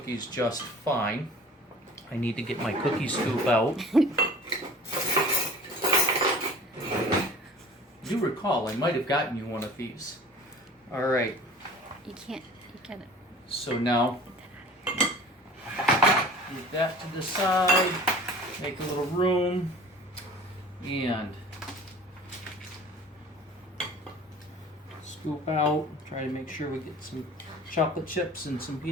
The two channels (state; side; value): normal; both; correlation 0.44